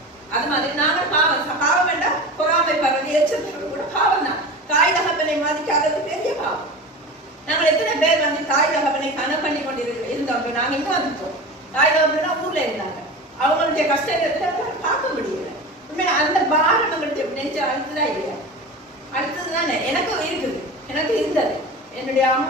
அது மாதிரி நாங்கள் பாவம் வேண்டாம், பொறாமை பரவது எச்சரிக்கை கூட பாவம் தான். தாய் தகப்பனை மதிக்காதது பெரிய பாவம். நாங்கள் எத்தனை பேர் தாய் தகப்பனை கனம் பண்ணி கொண்டு இருந்தோம். நாங்க இங்க வந்துட்டோம். தாய் தகப்பனா ஊர்ல இருந்தாங்க, அவங்களுடைய கஷ்டத்தை பார்க்க முடியல. உண்மையா அந்த பாரம் நம்மளுடைய நெஞ்சு அழுத்துதான் இல்லையா? அடுத்ததுதானே எனக்கும் இருக்குது, எனக்கு இருந்தது. என்னுடைய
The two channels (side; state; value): both; normal; correlation 0.31